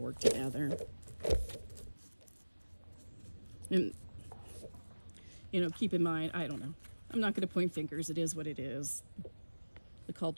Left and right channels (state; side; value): inverted; both; correlation -1.00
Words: work together. And, keep in mind, I don't know. I'm not going to point fingers. It is what it is. The